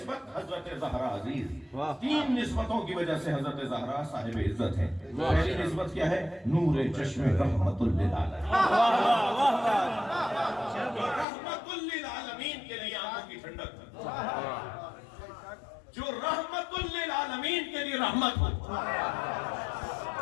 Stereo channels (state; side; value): drops out; right; at 11.2 s